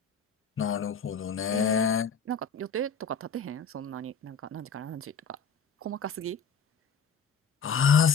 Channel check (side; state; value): right; quieter; 4.8 dB